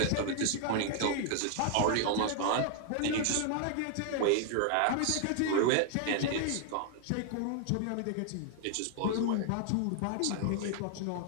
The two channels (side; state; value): both; different; correlation 0.00